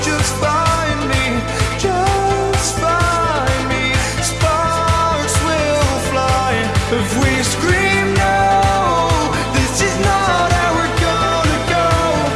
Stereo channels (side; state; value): both; identical; correlation 1.00